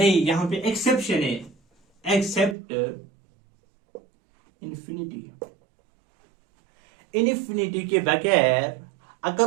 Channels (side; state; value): left; drops out; at 2.6 s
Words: यहां पे एक्सेप्शन है, एक्सेप्ट इन्फिनिटी, इन्फिनिटी के बगैर अगर